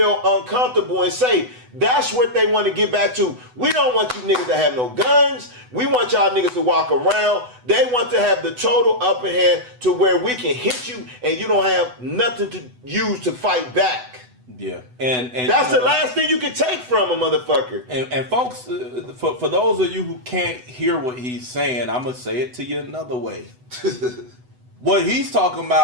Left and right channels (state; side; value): late; left; 8.0 ms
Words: uncomfortable and say, that's what they want to get back to. We don't want you niggas to have no guns. We want y'all niggas to walk around. They want to have the total upper hand to where we can hit you and you don't have nothing to use to fight back. Yeah, and that's the last thing you can take from a motherfucker. And folks, for those of you who can't hear what he's saying, I'm gonna say it to you another way. What he's talking